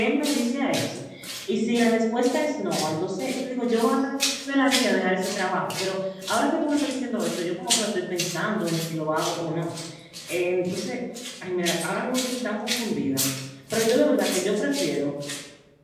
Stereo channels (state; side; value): identical; both; correlation 1.00